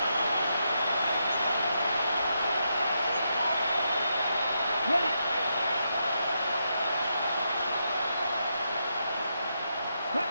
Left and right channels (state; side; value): inverted; both; correlation -0.82